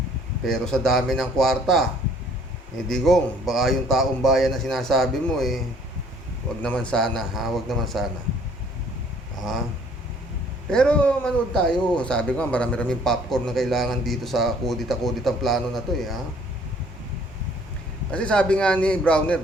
Pero sa dami ng kwarta, Digong, baka yung taong bayan na sinasabi mo, wag naman sana, ha? Wag naman sana. Ha? Pero manood tayo. Sabi ko, marami-raming popcorn na kailangan dito sa kudita-kuditang plano na to, ha? Kasi sabi nga ni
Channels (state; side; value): normal; both; correlation 0.59